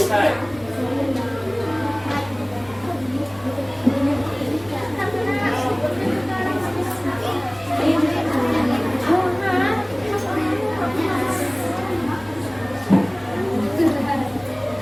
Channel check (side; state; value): left; noise; hum, 24 dB below the sound